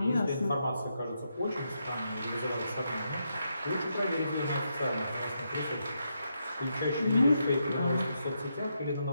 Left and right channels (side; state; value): both; inverted; correlation -0.82